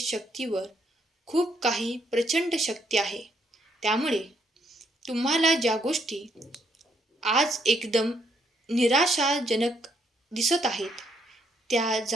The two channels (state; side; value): normal; both; correlation 0.73